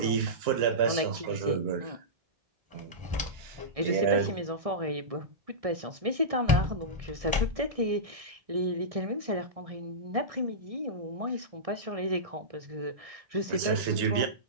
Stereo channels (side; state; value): left; late; 1.6 ms